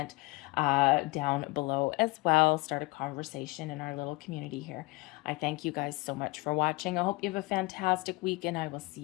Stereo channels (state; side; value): quieter; right; 23.8 dB